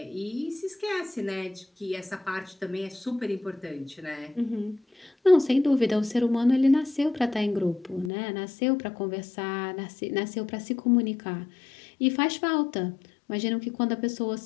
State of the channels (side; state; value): right; drops out; at 8.1 s